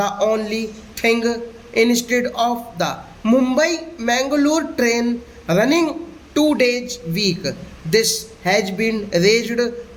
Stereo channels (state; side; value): identical; both; correlation 1.00